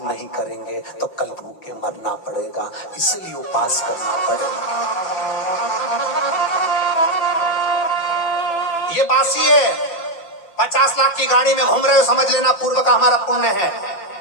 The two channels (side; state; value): right; late; 5.9 ms